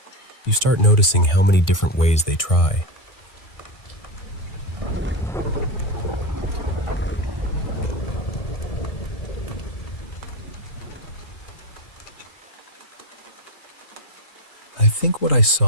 You start noticing how many different ways they try. I think what I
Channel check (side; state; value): right; late; 3.0 ms